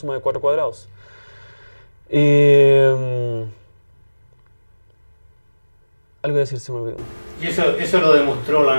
de 4 cuadrados. Y algo que decir se me olvidó. Y eso lo demostró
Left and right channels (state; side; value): inverted; both; correlation -1.00